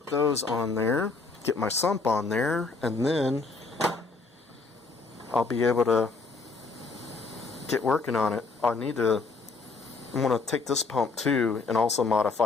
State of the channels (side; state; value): right; quieter; 4.0 dB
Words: those on there, get my sump on there, and then I'll be able to get working on it. I'm going to take this pump too and also